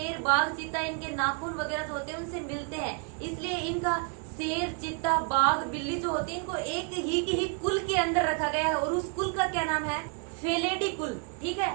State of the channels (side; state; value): left; quieter; 38.0 dB